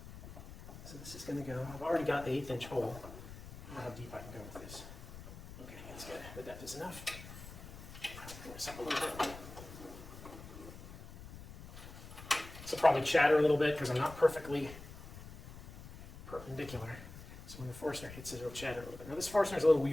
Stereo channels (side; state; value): left; noise; rumble, 14 dB below the sound